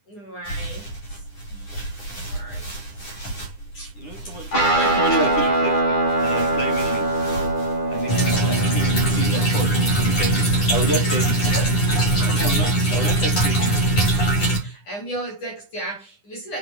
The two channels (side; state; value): right; late; 9.9 ms